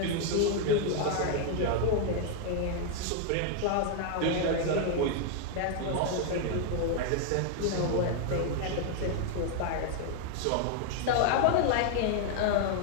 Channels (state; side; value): different; both; correlation 0.00